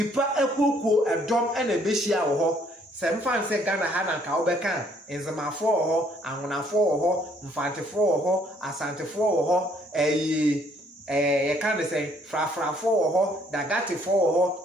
ekoko edom na behia wo ho sem fan say Ghana ha na ka obeka enzamafo wo ho ahonafo wo ho mfantefo wo ho asantefo wo ho ye kan say frafrafo wo ho dagatefo wo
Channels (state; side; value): normal; both; correlation 0.64